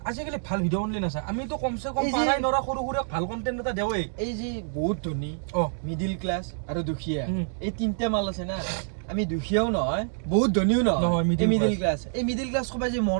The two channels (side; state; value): left; silent; digital silence